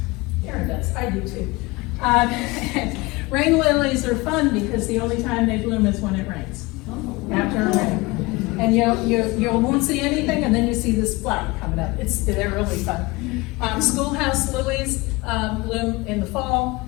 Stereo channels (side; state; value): right; quieter; 23.3 dB